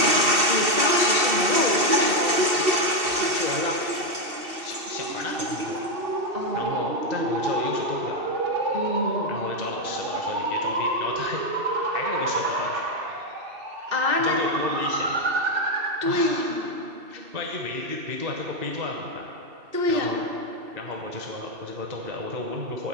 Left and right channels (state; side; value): late; left; 2.7 ms